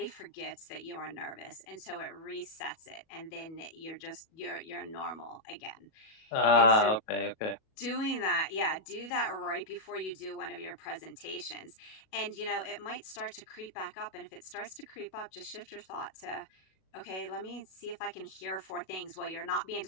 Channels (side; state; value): right; late; 37 ms